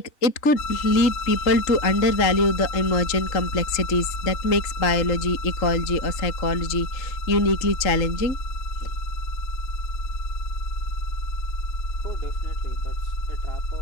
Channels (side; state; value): right; late; 3.8 ms